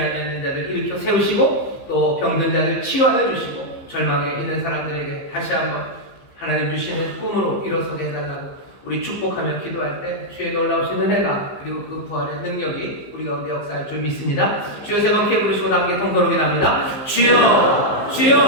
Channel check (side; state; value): right; late; 15 ms